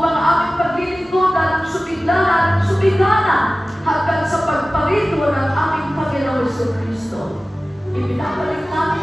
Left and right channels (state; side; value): normal; both; correlation 0.97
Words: aming paglilingkuran ng sumigana hanggang sa pagparito ng aming Panginoon Jesucristo. Ibinabalik namin